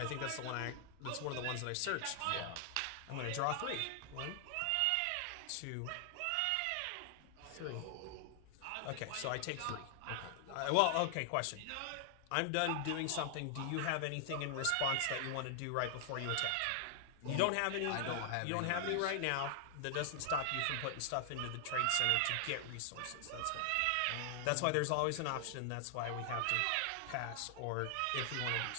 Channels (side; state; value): both; different; correlation 0.00